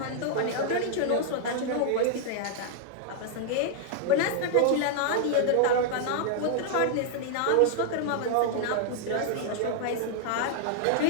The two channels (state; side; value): different; both; correlation -0.01